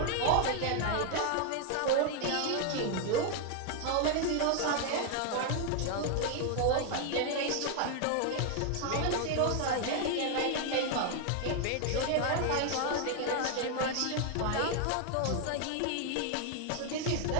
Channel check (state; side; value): different; both; correlation 0.01